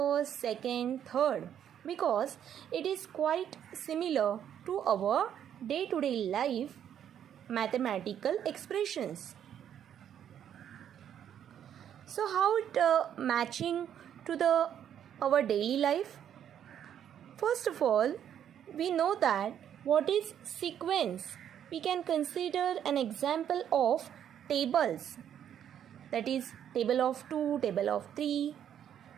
2nd, 3rd because it is quite similar to our day-to-day life mathematical expressions. So how it matching to our daily life? First of all, we know that what is sequence. We can consider an example of tables. That is table of 2, table of 3,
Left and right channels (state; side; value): quieter; left; 9.6 dB